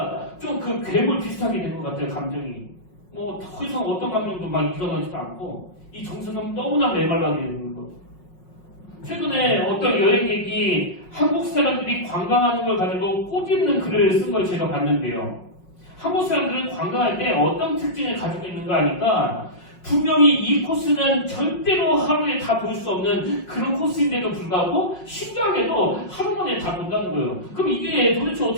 좀 그 괴물 비슷하게 된 것 같아요. 감정이. 뭐 더 이상 어떤 감정도 막 일어나지도 않고 이 정서는 너무나 메말라게 되는 거죠. 최근에 어떤 여행객이 한국 사람들이 관광하는 걸 가지고 꼬집는 글을 쓴 걸 제가 봤는데요. 한국 사람들은 관광할 때 어떤 특징을 가지고 있는가 하니까 분명히 이 코스는 절대로 하루에 다 볼 수 없는 그런 코스인데도 불구하고 신기하게도 하루 만에 다 본다는 거예요. 그럼 이게 도대체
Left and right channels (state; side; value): late; right; 5.5 ms